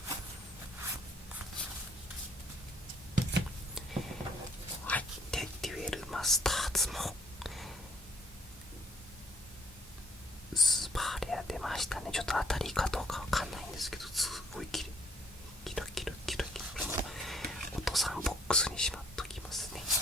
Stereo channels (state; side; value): normal; both; correlation 0.63